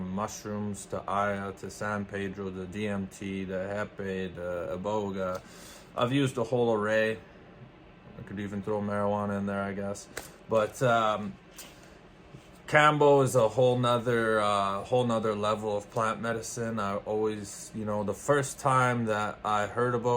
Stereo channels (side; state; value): both; identical; correlation 1.00